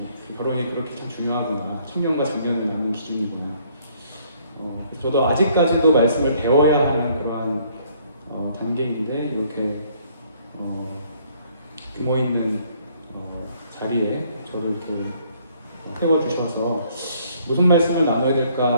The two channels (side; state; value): both; inverted; correlation -0.64